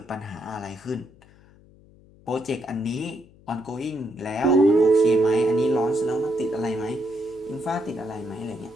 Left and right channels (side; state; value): left; noise; hum, 26 dB below the sound